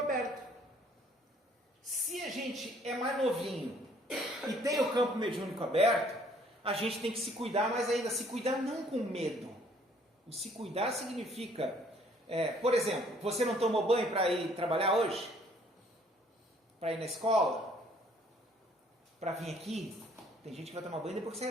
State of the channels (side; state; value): both; normal; correlation 0.60